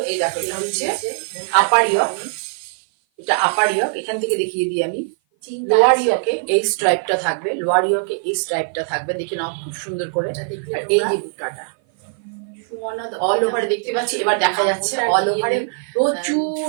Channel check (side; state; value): left; silent; 56 dB below the other